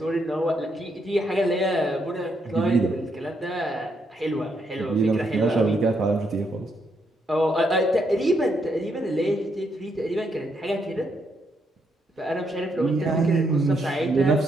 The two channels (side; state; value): both; normal; correlation 0.77